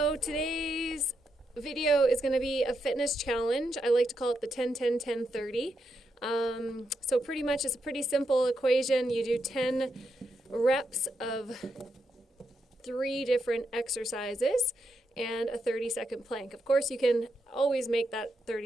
today's video is going to be a fitness challenge. I like to call it the 10-10-10-30. So pretty much it's a pretty simple equation. You do 10 reps of 3 different exercises and a 30-second plank. Of course, you can always make that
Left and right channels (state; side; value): normal; both; correlation 0.82